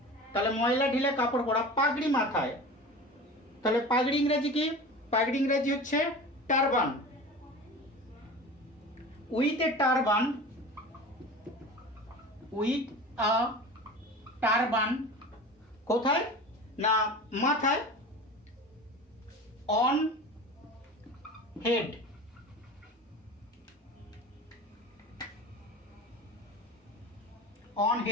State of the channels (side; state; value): both; normal; correlation 0.35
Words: তাহলে ময়লা ঢিলে কাপড় পরা, পাগড়ি মাথায়। তাহলে পাগড়ি ইংরেজি কি? পাগড়ি ইংরেজি হচ্ছে turban. With a turban, with a turban, কোথায় না মাথায়, অন হেড, অন